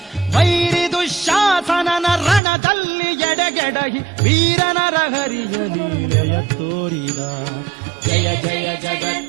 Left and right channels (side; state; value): left; drops out; at 2.4 s